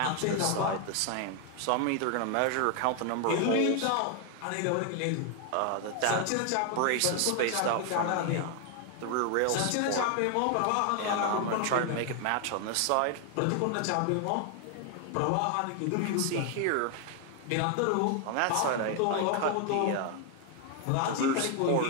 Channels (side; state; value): both; different; correlation 0.00